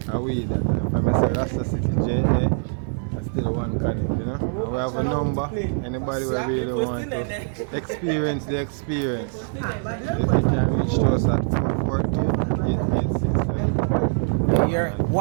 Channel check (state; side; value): silent; left; 63 dB below the other